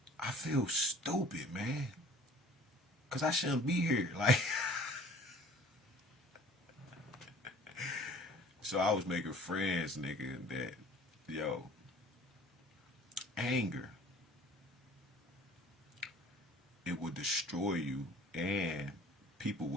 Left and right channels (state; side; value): normal; both; correlation 0.50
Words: I feel stupid, man. Cause I shouldn't be here. Like, so I was making friends, nigga, that, yo, Anger, it would destroy you, and people